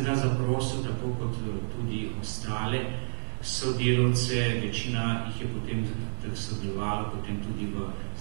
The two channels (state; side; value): silent; left; 57 dB below the other